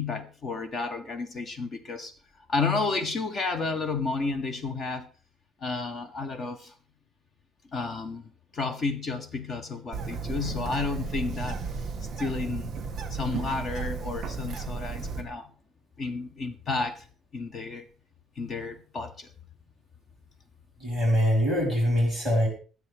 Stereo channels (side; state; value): both; normal; correlation 0.65